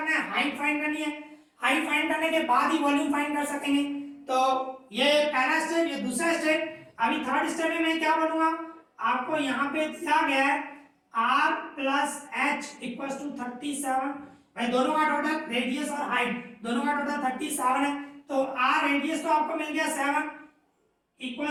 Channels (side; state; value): both; identical; correlation 1.00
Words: है, हाइट फाइंड करनी है। हाइट फाइंड करने के बाद ही वॉल्यूम फाइंड कर सकेंगे। तो ये पहला स्टेप, ये दूसरा स्टेप। अभी थर्ड स्टेप में मैं क्या बोलूंगा, आपको यहाँ पे दिया गया है r plus h equals to 37, भाई दोनों का टोटल रेडियस और हाइट दोनों का टोटल 37 है, तो r रेडियस तो आपको मिल गया 7